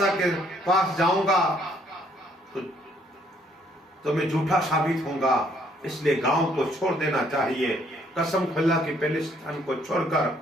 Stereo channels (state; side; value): normal; both; correlation 0.66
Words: کے پاس جاؤں گا تو میں جھوٹا ثابت ہوں گا، اس لیے گاؤں کو چھوڑ دینا چاہیے۔ قسم خدا کی فلسطین کو چھوڑ کر